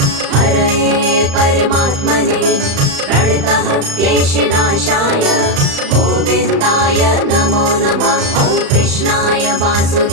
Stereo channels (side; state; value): left; late; 35 ms